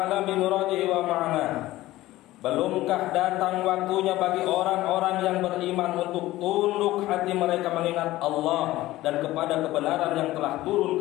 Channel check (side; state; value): right; quieter; 16.7 dB